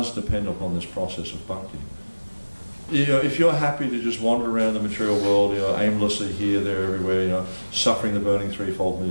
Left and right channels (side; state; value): both; inverted; correlation -1.00